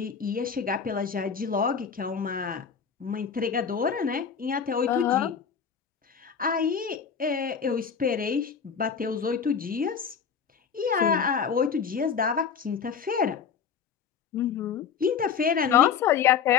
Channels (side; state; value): right; quieter; 6.8 dB